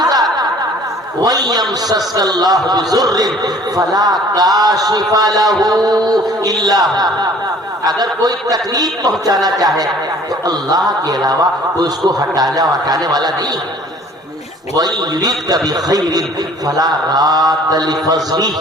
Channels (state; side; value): normal; both; correlation 0.52